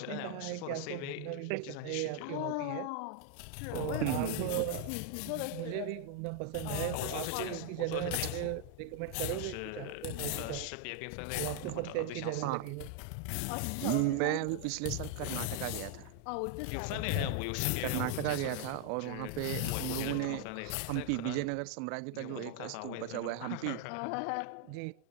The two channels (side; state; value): both; different; correlation 0.00